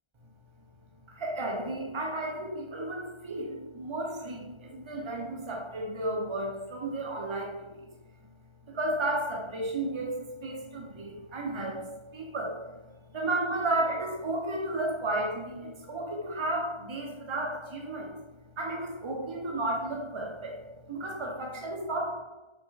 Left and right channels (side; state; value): left; late; 1.3 ms